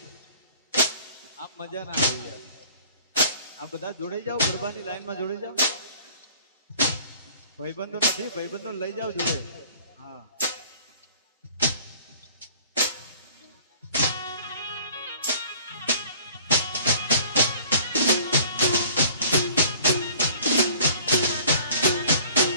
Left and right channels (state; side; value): inverted; both; correlation -0.50